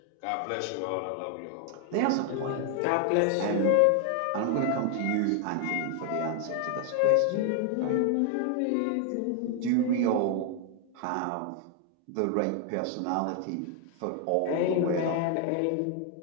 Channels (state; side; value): different; both; correlation 0.00